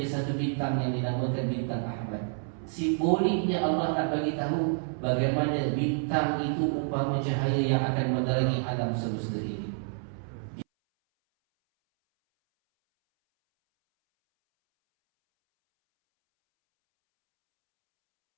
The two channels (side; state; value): left; silent; 59 dB below the other